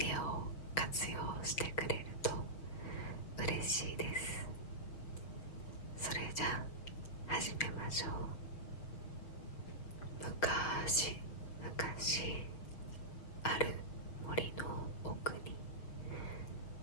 オを活用してくれると嬉しいです。それじゃあ始めましょう。昔々ある森の奥に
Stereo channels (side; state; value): right; late; 6.4 ms